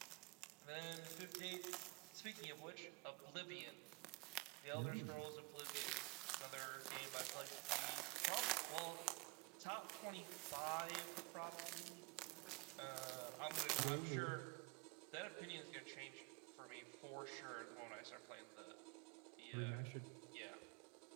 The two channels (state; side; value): quieter; left; 27.9 dB